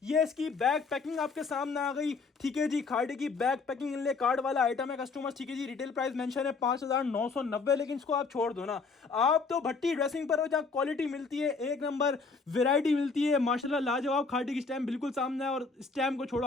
ये इसकी बैक पैकिंग आपके सामने आ गई, ठीक है जी। खाड़ी की बैक पैकिंग इनले कार्ड वाला आइटम है कस्टमर, ठीक है जी। रिटेल प्राइस मेंशन है 5990, लेकिन इसको आप छोड़ दो ना। आप तो भट्टी ड्रेसिंग पर हो जहाँ क्वालिटी मिलती है, एक नंबर वेराइटी मिलती है माशाल्लाह लाजवाब। खाड़ी की स्टैम्प बिल्कुल सामने है, और स्टैम्प को छोड़ो,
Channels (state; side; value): quieter; right; 4.5 dB